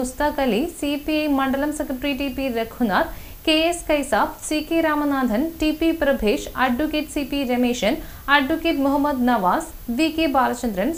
Ali, CPI മണ്ഡലം secretary TP Raghunath, KS Kaisab, CK Ramanathan, TP Prabhesh, advocate CP Rameshan, advocate Muhammad Nawaz, VK Balachandran,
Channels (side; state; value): both; identical; correlation 1.00